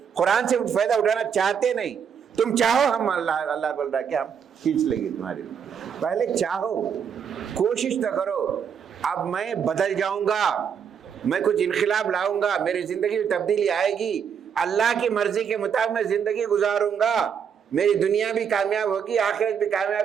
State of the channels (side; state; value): left; quieter; 7.4 dB